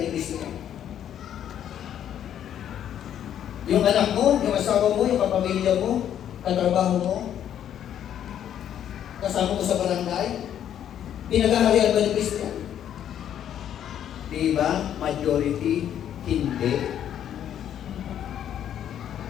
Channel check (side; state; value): right; quieter; 10.1 dB